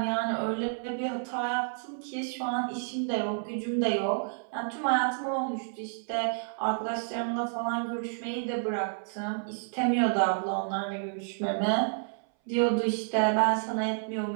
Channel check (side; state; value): left; silent; 58 dB below the other